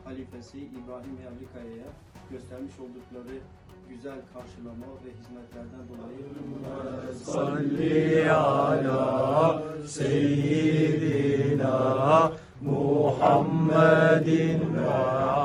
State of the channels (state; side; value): identical; both; correlation 1.00